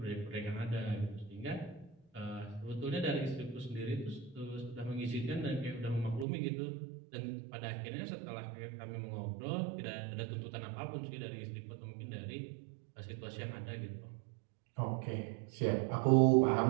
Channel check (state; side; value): drops out; left; at 6.2 s